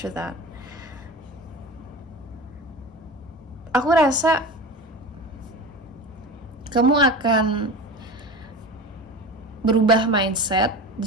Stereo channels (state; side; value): normal; both; correlation 0.31